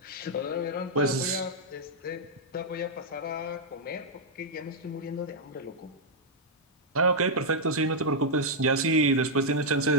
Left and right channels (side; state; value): both; normal; correlation -0.05